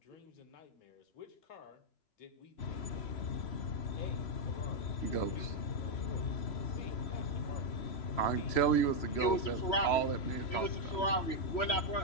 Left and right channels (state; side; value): late; right; 3.0 ms